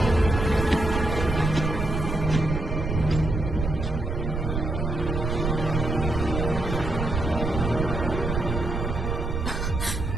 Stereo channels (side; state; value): right; noise; rumble, 3 dB below the sound